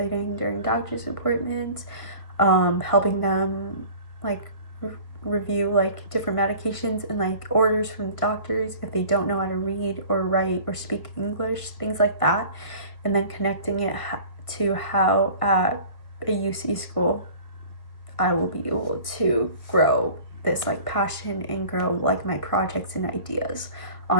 during doctor's appointments, helping them like review like different medications and like orders from the doctors if they don't know how to read or write or speak English, things like that, and then connecting it to how at a UC school I will be able to grow this like passion and grow like my projects and ideas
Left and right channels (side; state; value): right; late; 1.7 ms